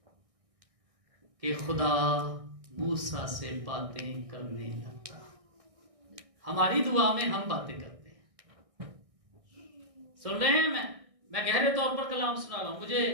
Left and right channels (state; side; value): late; left; 1.6 ms